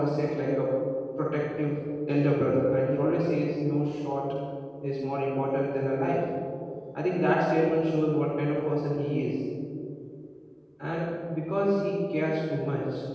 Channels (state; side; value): identical; both; correlation 1.00